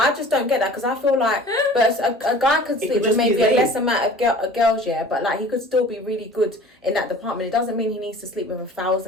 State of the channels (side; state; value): both; normal; correlation 0.45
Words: just don't get that because I feel like, but a guy could sleep with maybe a less amount of girls, but like he could still be really good in that department. It doesn't mean he needs to sleep with